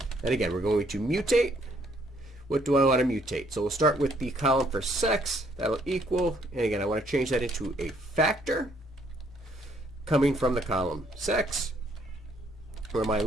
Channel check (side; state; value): both; normal; correlation 0.67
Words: And again, we're going to mutate. What do I want to mutate? So we'll start with the column for sex. That'll equal, and again, I want to change that into a factor coming from the column sex, where my